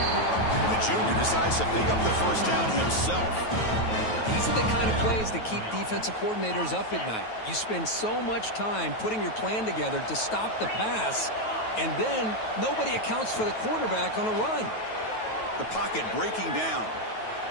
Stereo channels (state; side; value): late; right; 9.2 ms